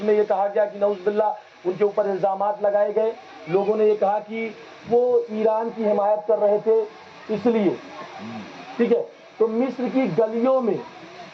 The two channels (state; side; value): identical; both; correlation 1.00